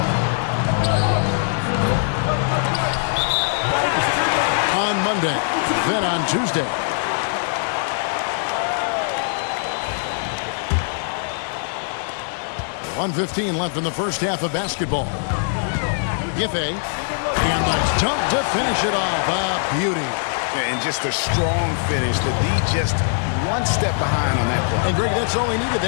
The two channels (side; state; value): right; silent; 64 dB below the other